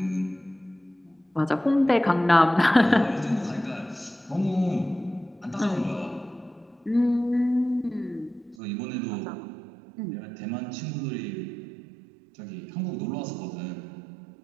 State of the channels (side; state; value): left; drops out; at 8.6 s